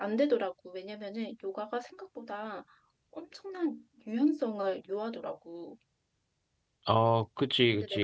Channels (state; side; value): identical; both; correlation 1.00